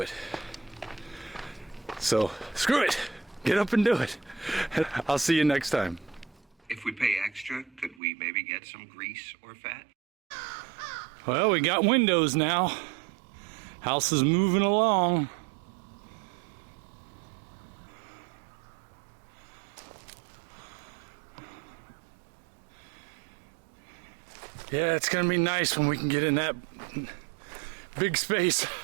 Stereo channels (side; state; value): left; drops out; at 8.0 s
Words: So screw it, get up and do it. I'll see you next time. If we pay extra, could we maybe get some grease or fat? Well, we got windows now. House is moving along. Yeah, it's gonna be nice when we can get in that big space,